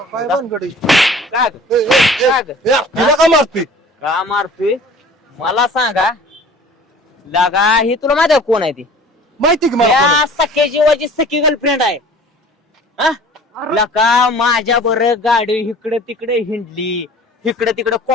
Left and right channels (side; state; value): both; normal; correlation 0.46